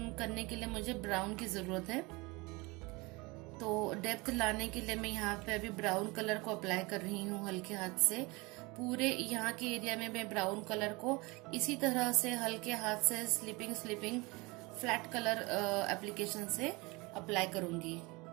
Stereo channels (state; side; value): quieter; left; 25.2 dB